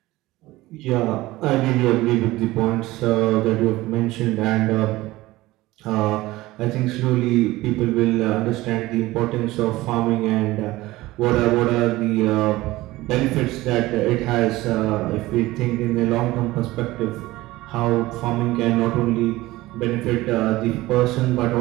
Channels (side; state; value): left; quieter; 18.4 dB